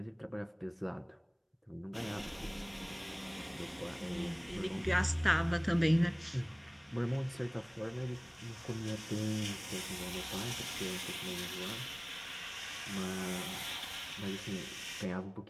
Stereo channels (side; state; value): both; identical; correlation 1.00